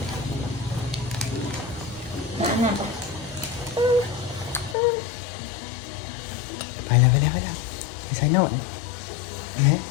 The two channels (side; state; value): right; drops out; at 4.8 s